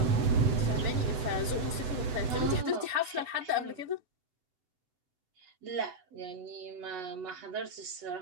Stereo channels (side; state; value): left; late; 7.9 ms